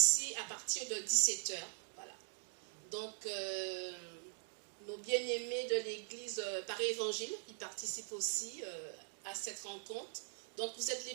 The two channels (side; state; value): left; silent; digital silence